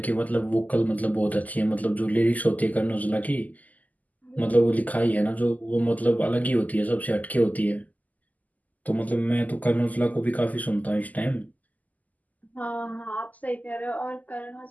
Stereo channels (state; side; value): late; right; 0.079 ms